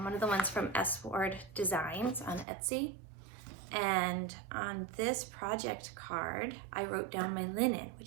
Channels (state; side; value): drops out; left; at 2.5 s